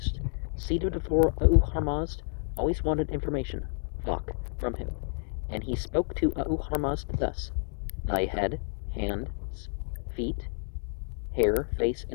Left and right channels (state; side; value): silent; right; digital silence